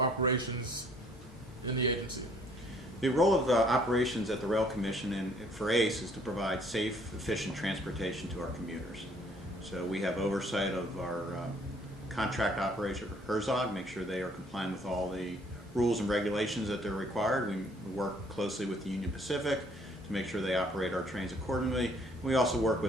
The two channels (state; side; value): normal; both; correlation 0.61